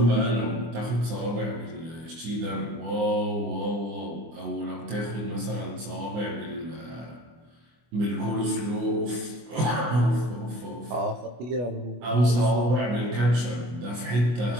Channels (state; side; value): late; left; 25 ms